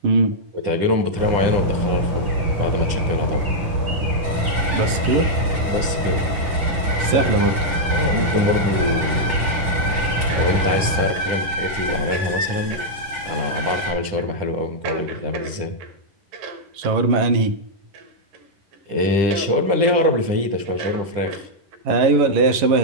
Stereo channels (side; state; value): left; late; 10 ms